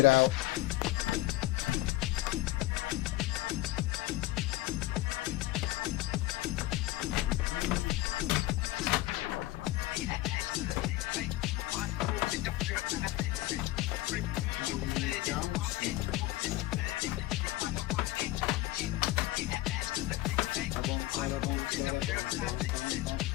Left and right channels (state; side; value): quieter; right; 17.1 dB